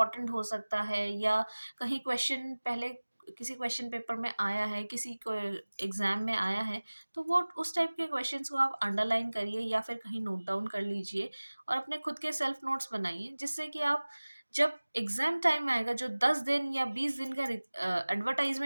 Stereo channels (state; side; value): inverted; both; correlation -1.00